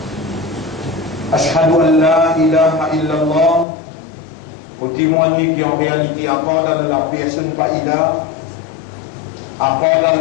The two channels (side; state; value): right; drops out; at 3.7 s